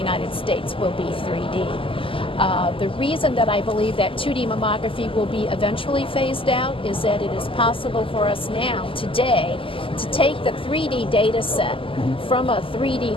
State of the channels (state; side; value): late; right; 0.25 ms